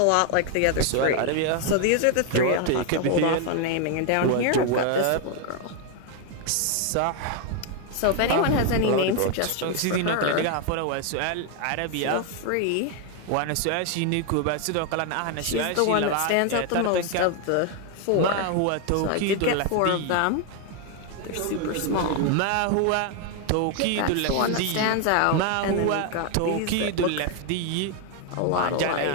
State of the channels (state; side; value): different; both; correlation 0.01